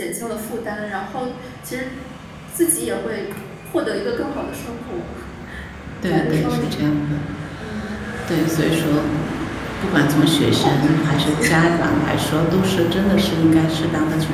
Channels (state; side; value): identical; both; correlation 1.00